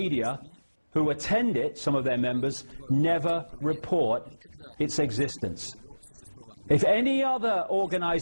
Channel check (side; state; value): both; inverted; correlation -1.00